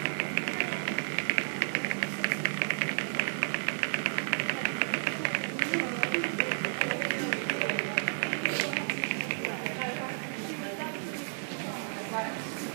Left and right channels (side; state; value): left; silent; digital silence